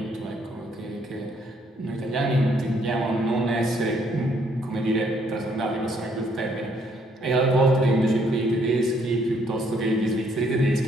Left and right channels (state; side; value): normal; both; correlation 0.68